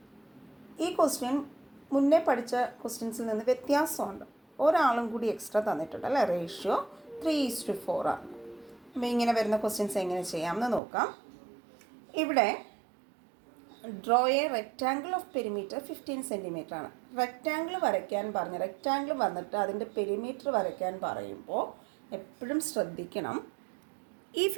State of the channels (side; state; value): left; drops out; at 10.8 s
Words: ഈ question മുന്നേ പഠിച്ച ക്വസ്റ്റ്യൻസിൽ നിന്ന് വ്യത്യാസമുണ്ട്. ഒരാളും കൂടി എക്സ്ട്രാ തന്നിട്ടുണ്ട് അല്ലേ. റേഷ്യോ 3:4 ആണ്. അപ്പോൾ ഇങ്ങനെ വരുന്ന ക്വസ്റ്റ്യൻസ് എങ്ങനെ ചെയ്യാമെന്ന് നോക്കാം. ഇവിടെ draw A rectangle of perimeter 15 centimetre ആണ്. റെക്റ്റാങ്കിൾ വരയ്ക്കാൻ പറഞ്ഞ് റെക്റ്റാങ്കിൾ വന്നിട്ട് അതിൻ്റെ പെരിമീറ്റർ വരയ്ക്കാൻ പറയുമ്പോൾ എപ്പോഴും ശ്രദ്ധിക്കണം, ഈ